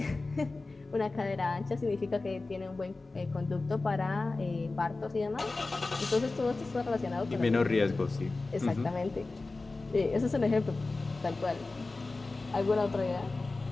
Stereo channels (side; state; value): right; quieter; 3.5 dB